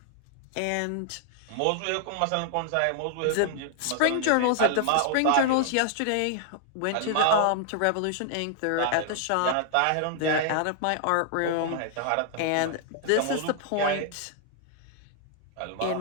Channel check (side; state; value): both; different; correlation 0.00